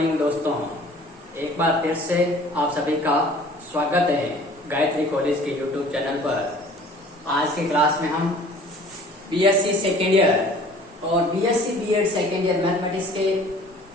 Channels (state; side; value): normal; both; correlation 0.49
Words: दोस्तों, एक बार फिर से आप सभी का स्वागत है गायत्री कॉलेज के यूट्यूब चैनल पर। आज की क्लास में हम बीएससी सेकेंड ईयर और BSc BEd second year mathematics के